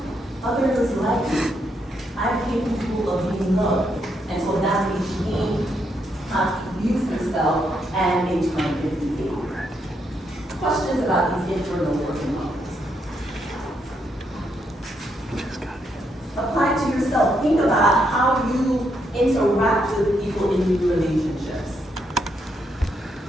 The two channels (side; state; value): both; normal; correlation 0.78